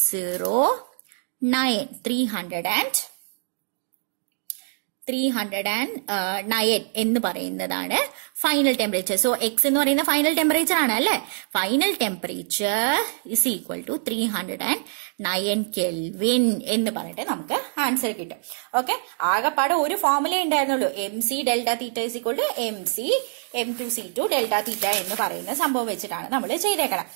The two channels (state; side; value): silent; left; digital silence